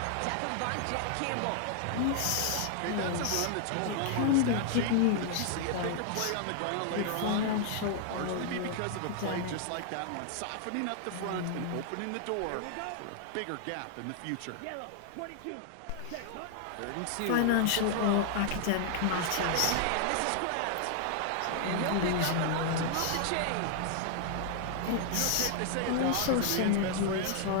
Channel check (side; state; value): both; different; correlation -0.01